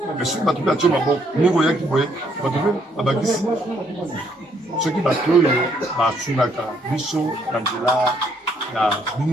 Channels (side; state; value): both; normal; correlation 0.70